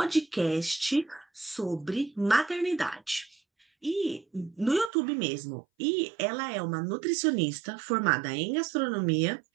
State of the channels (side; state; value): left; drops out; at 4.9 s